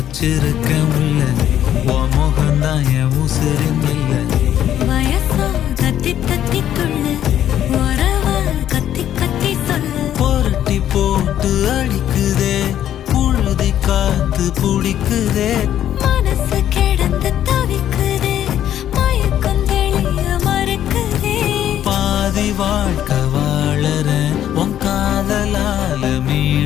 வச்சிருக்க முல்ல உன் முகம்தான் என் உசிரின் இல்ல வயசா தத்தி தத்தி துள்ளு உறவா கத்தி கத்தி சொல்லு புரட்டி போட்டு அடிக்குதே புழுதி காத்து புடிக்குதே மனசு கிடந்து தவிக்குதே மயக்கம் தெளிய மறுக்குதே பாதி வாழ்க்கை வாழறேன் உன் காதலால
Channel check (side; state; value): right; quieter; 11.0 dB